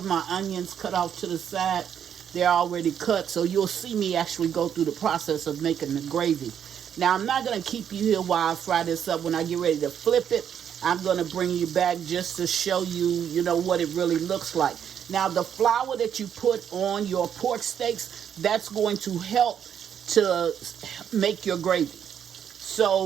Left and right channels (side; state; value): left; quieter; 8.7 dB